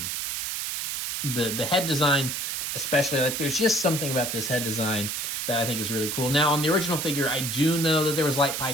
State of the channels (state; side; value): noise; right; hiss, 2 dB below the sound